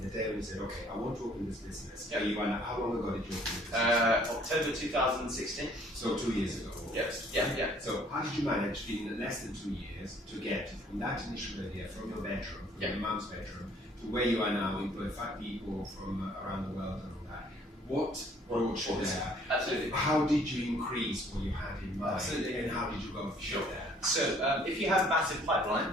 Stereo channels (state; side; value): normal; both; correlation 0.59